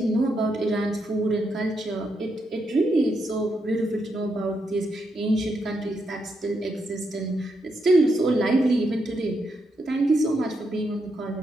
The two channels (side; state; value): both; normal; correlation 0.81